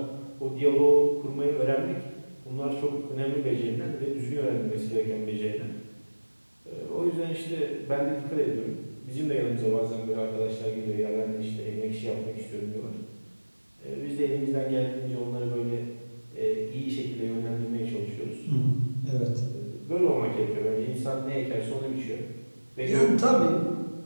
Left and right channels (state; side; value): inverted; both; correlation -1.00